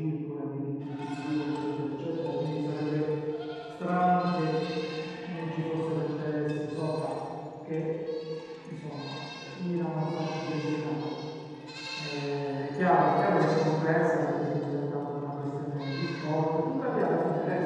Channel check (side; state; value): both; identical; correlation 1.00